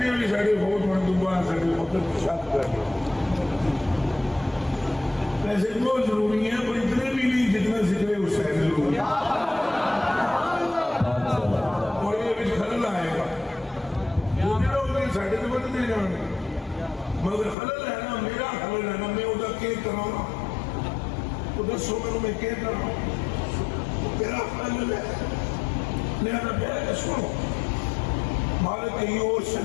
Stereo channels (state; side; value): drops out; right; at 17.6 s